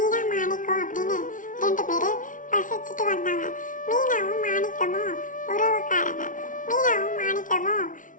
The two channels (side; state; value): right; late; 0.38 ms